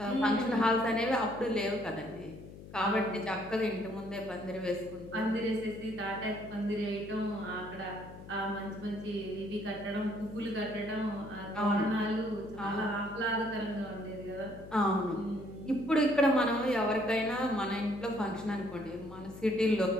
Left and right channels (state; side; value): noise; left; hum, 15 dB below the sound